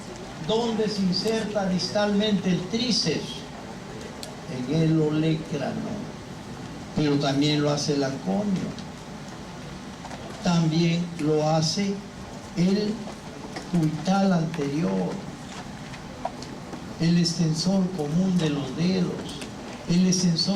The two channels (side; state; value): both; identical; correlation 1.00